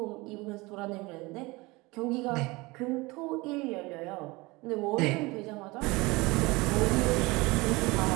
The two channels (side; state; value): left; quieter; 23.2 dB